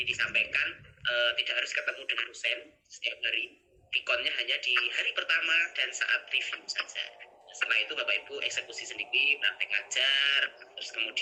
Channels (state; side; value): identical; both; correlation 1.00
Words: disampaikan tidak harus ketemu dengan dosen setiap hari. Pikonnya hanya di hari pertama dan saat review saja. Setelah itu Bapak Ibu eksekusi sendiri, praktek ngajar, terus